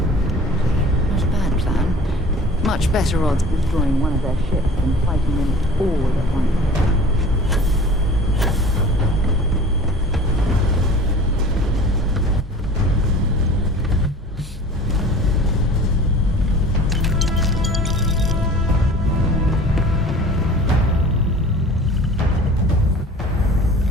Not a bad plan. Much better odds of destroying one of their ships than fighting them all at once.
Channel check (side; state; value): both; normal; correlation 0.43